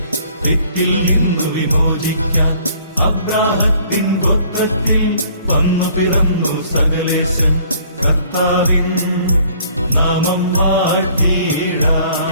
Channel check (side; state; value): both; inverted; correlation -0.57